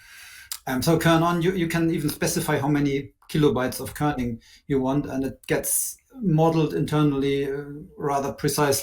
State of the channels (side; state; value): both; identical; correlation 1.00